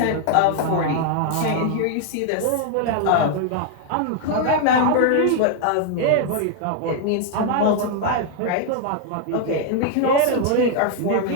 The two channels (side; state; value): both; different; correlation 0.00